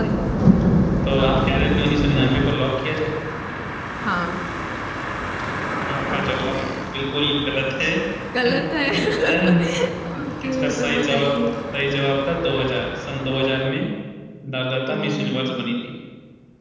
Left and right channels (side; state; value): both; identical; correlation 1.00